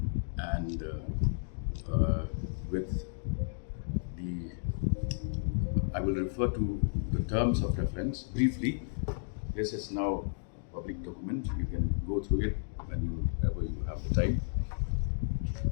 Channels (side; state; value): right; silent; digital silence